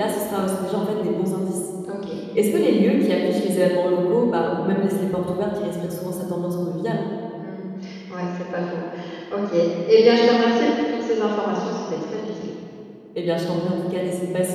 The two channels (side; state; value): both; identical; correlation 1.00